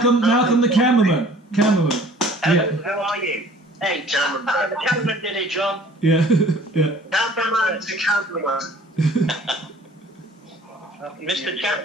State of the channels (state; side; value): normal; both; correlation 0.51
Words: the cameraman. Yeah. How are you? Hey, the cameraman did it, John. Yeah. Yeah. Cameraman to cameraman. Mr.